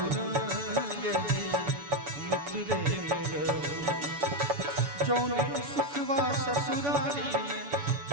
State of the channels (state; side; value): late; left; 7.0 ms